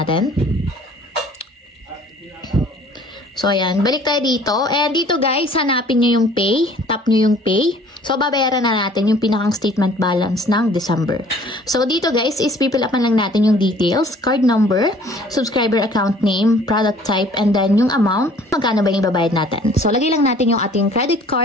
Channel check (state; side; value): normal; both; correlation 0.53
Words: So, ayan. Balik tayo dito. And dito guys, hanapin nyo yung pay. Tap nyo yung pay. So, babayaran na natin yung pinakang statement balance ng December. So, dito guys, is pipilapan lang natin yung details, card number, subscriber account name, product type, and then yung amount, magkano ba yung babayad natin. So, lagay lang natin yung ating credit